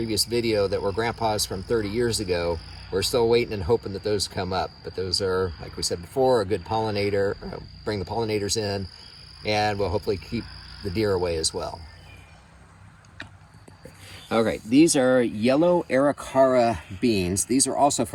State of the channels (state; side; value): identical; both; correlation 1.00